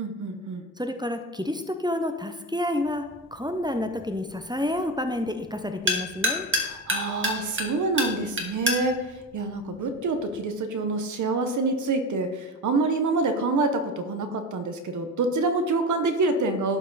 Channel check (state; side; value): normal; both; correlation 0.23